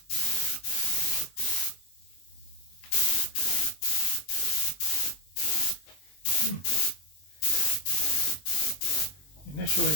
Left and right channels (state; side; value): late; right; 21 ms